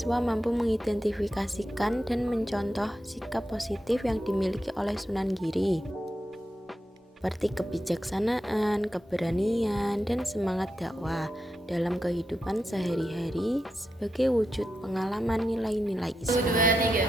mampu mengidentifikasikan dan mencontoh sikap positif yang dimiliki oleh Sunan Giri, seperti kebijaksanaan, keberanian, dan semangat dakwah dalam kehidupan sehari-hari sebagai wujud pengalaman nilai-nilai Islam. 1, 2,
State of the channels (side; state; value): both; normal; correlation 0.87